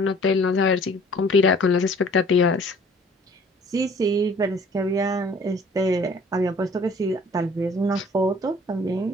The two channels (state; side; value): normal; both; correlation 0.53